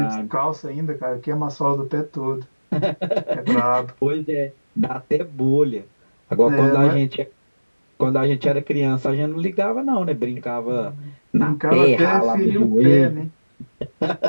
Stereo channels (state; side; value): inverted; both; correlation -1.00